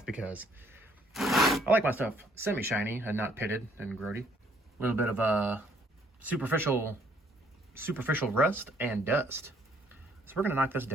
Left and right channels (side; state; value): both; normal; correlation 0.64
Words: because I like my stuff semi-shiny and not pitted and grody. A little bit of a superficial rust and dust. So we're gonna knock this